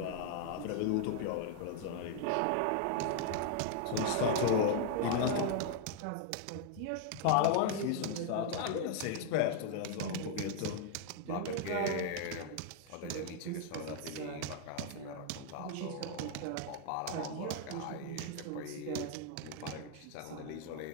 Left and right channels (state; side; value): different; both; correlation 0.00